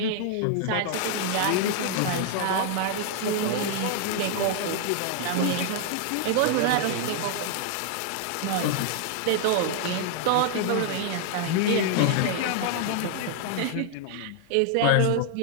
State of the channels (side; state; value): both; different; correlation 0.00